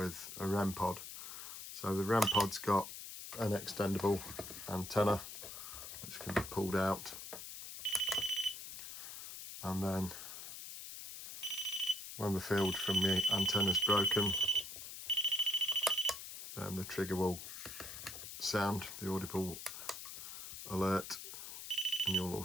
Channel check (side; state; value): left; noise; hiss, 10 dB below the sound